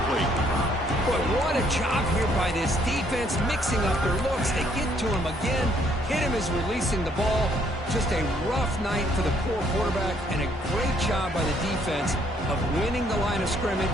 But what a job here by this defense, mixing up their looks. They get to him again. Hit him as releasing the ball. Just a rough night for the poor quarterback, and a great job by the defense of winning the line of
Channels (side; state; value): both; normal; correlation 0.67